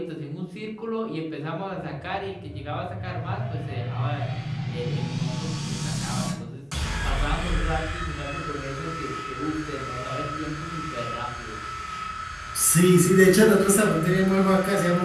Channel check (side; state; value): both; identical; correlation 1.00